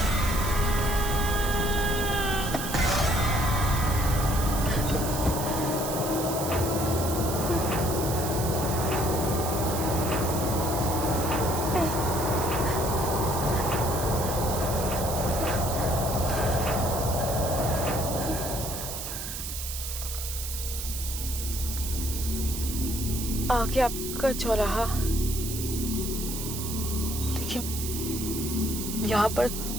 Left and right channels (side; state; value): right; noise; hiss, 6 dB below the sound